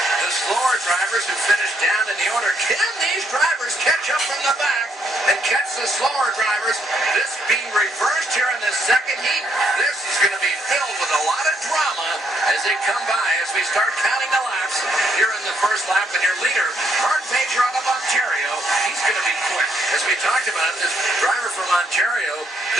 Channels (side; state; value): both; normal; correlation 0.73